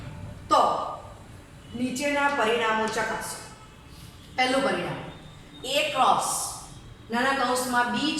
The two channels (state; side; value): identical; both; correlation 1.00